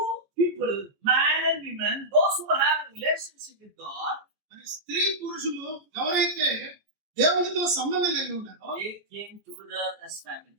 people, man and woman, those who have relationship with God, మరి స్త్రీ పురుషులు ఎవరైతే దేవునితో సంబంధం కలిగి ఉన్నారో they came together as family.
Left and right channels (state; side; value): late; left; 14 ms